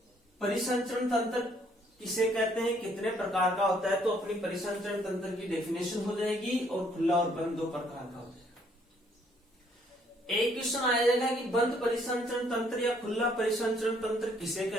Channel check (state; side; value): normal; both; correlation 0.65